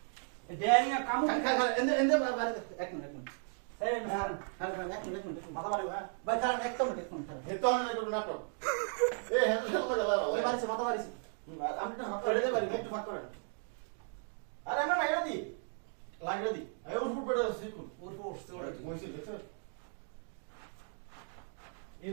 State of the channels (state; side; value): silent; left; 54 dB below the other